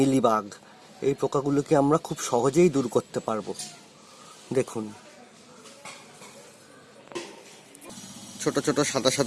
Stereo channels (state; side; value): identical; both; correlation 1.00